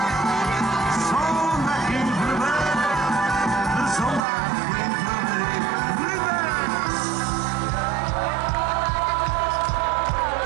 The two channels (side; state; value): left; drops out; at 4.2 s